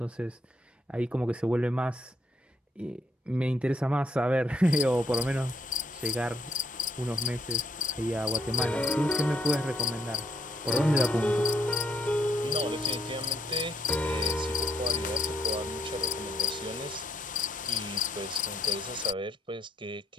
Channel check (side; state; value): both; normal; correlation 0.72